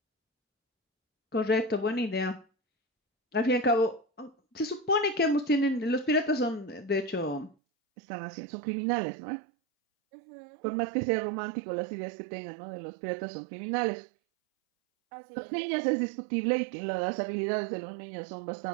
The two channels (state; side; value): drops out; left; at 7.6 s